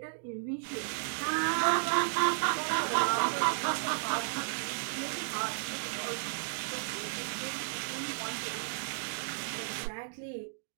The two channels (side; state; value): left; silent; digital silence